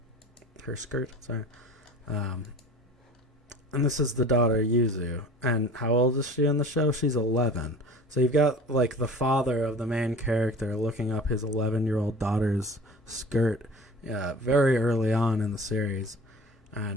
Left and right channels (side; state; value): both; normal; correlation 0.41